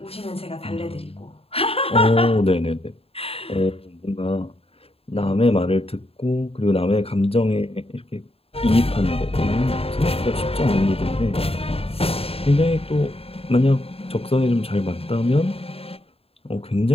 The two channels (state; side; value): late; right; 0.28 ms